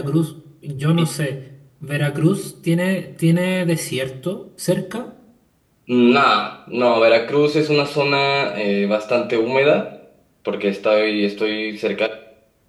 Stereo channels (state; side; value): identical; both; correlation 1.00